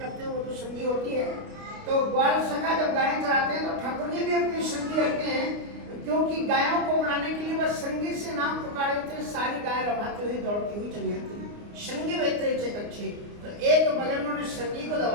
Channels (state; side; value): late; left; 29 ms